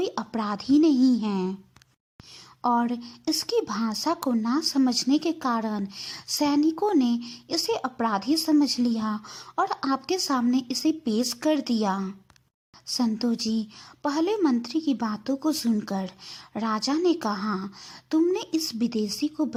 अपराधी नहीं है और इसकी भाषा को ना समझने के कारण सैनिकों ने इसे अपराधी समझ लिया और आपके सामने इसे पेश कर दिया। संतो जी, पहले मंत्री की बातों को सुनकर राजा ने कहा, तुमने इस विदेशी को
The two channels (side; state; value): both; identical; correlation 1.00